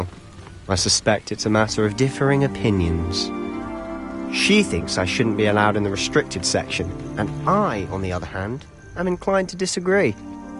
I suspect it's a matter of differing opinions. She thinks I shouldn't be allowed in the restricted section, and I, on the other hand, am inclined to disagree.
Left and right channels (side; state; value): both; identical; correlation 1.00